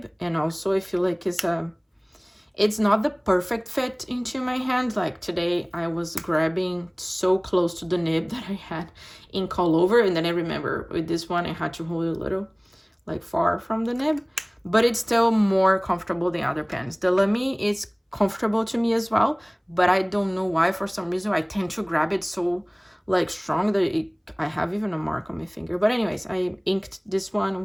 And also I feel like it's not the perfect fit into my hand. Like today I was grabbing so close to the nib that I had ink all over. And then I remember with this one, I had to hold it a little like far from the nib. But it's still more comfortable than other pens. The Lamy is comfortable to me as well, but I don't know why, for some reason I tend to grab it so like strong that I have even a mark on my finger. But anyways, I inked this one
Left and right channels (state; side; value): identical; both; correlation 1.00